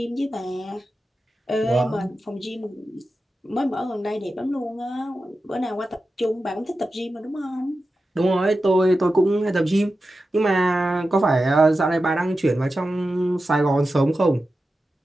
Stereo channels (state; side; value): normal; both; correlation 0.92